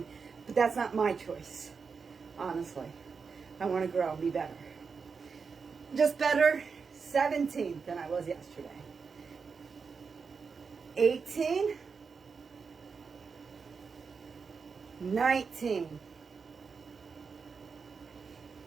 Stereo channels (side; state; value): left; quieter; 5.3 dB